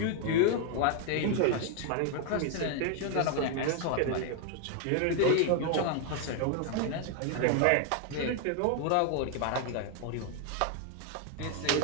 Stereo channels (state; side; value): different; both; correlation 0.00